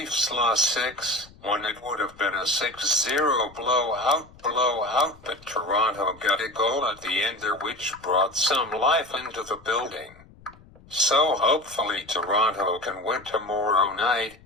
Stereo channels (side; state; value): left; noise; rumble, 24 dB below the sound